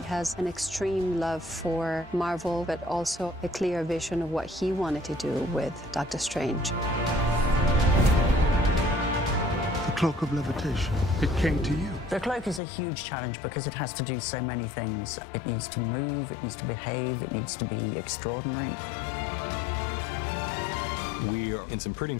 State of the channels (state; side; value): drops out; right; at 12.6 s